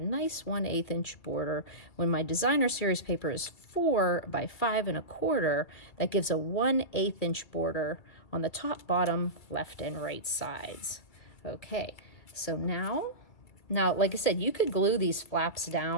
nice 1/8 inch border. When my designer series paper is 4 by 5 1/4, that gives a 1/8 inch border on the top, bottom, left, and right sides. Okay, so now, like I said, you could glue these flaps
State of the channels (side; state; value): right; late; 2.2 ms